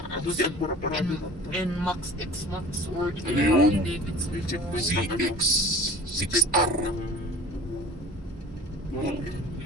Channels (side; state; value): both; normal; correlation 0.43